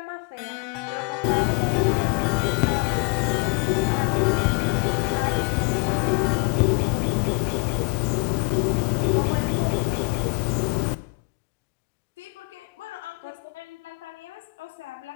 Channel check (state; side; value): quieter; right; 33.2 dB